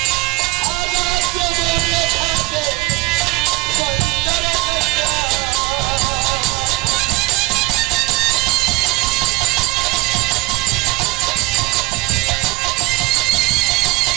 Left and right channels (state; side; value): quieter; left; 21.3 dB